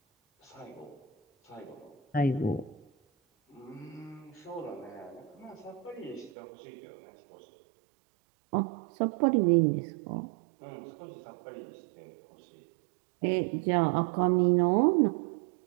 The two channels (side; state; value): left; drops out; at 6.3 s